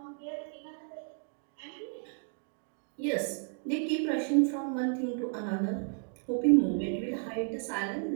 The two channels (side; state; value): left; silent; 56 dB below the other